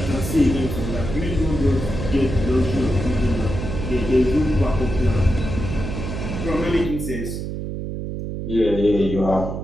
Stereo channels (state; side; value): noise; right; hum, 5 dB below the sound